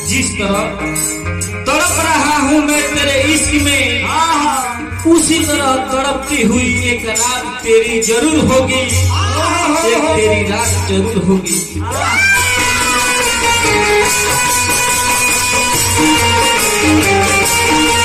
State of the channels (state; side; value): identical; both; correlation 1.00